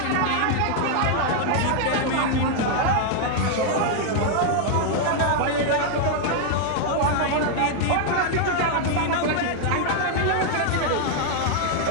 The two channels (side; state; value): both; different; correlation 0.00